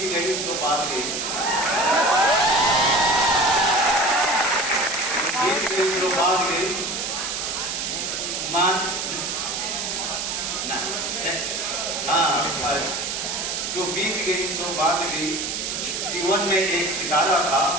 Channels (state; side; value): noise; right; hiss, 3 dB below the sound